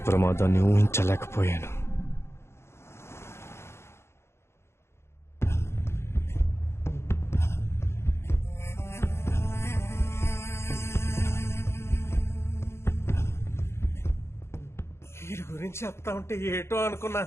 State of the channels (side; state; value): right; late; 0.13 ms